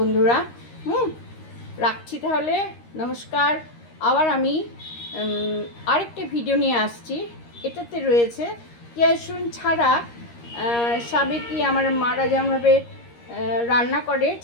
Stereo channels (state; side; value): late; right; 13 ms